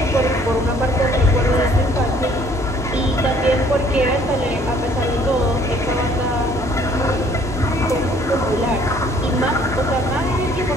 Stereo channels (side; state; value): both; normal; correlation 0.59